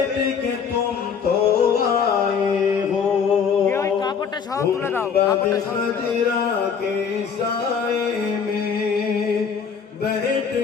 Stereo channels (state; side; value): quieter; right; 6.5 dB